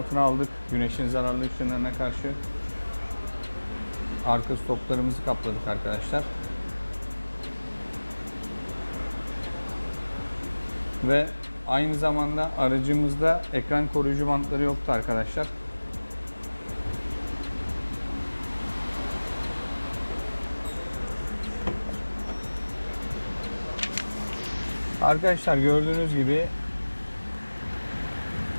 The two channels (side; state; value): both; inverted; correlation -1.00